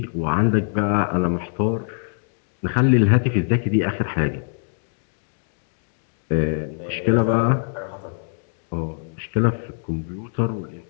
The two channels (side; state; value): right; silent; digital silence